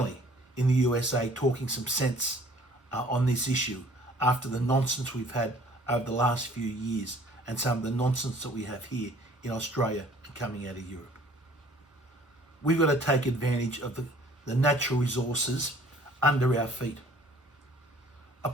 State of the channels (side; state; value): both; normal; correlation 0.55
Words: in the USA talking some sense on this issue after the nonsense we've had over the last few years and some of the nonsense that we have here in Australia and coming out of Europe. We've got to take advantage of the natural resources under our feet. A